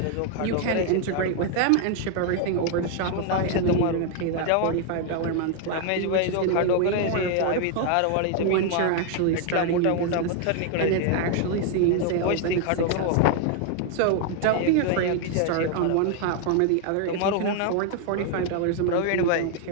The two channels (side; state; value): both; different; correlation 0.01